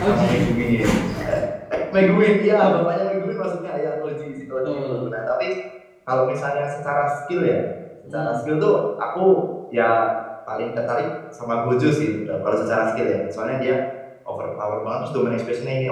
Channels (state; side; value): identical; both; correlation 1.00